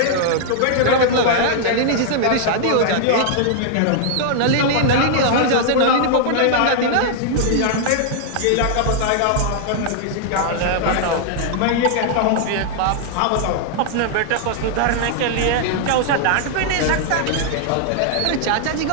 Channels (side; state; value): both; different; correlation -0.01